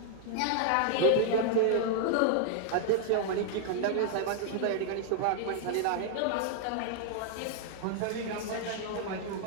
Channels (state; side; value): different; both; correlation 0.00